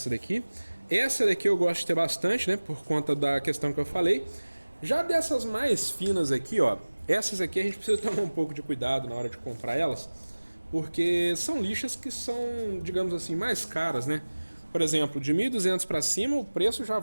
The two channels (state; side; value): inverted; both; correlation -1.00